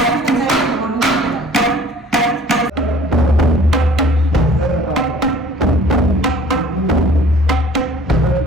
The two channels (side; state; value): both; normal; correlation 0.51